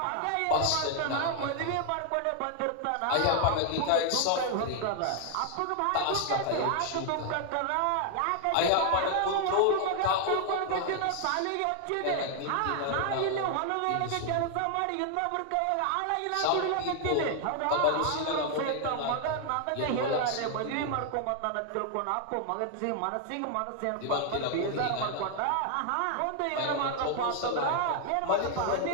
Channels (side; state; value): both; different; correlation 0.00